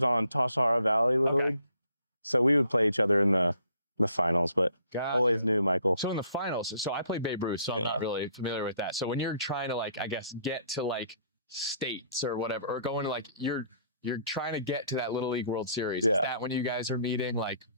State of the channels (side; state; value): both; inverted; correlation -0.63